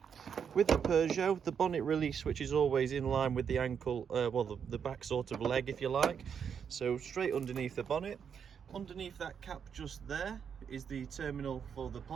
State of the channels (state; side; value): quieter; left; 7.3 dB